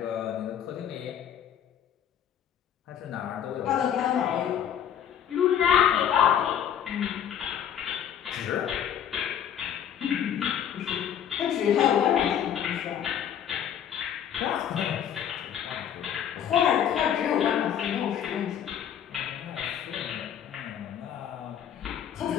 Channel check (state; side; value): quieter; right; 9.4 dB